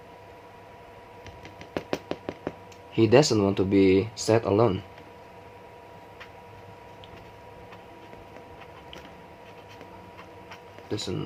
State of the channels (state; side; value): identical; both; correlation 1.00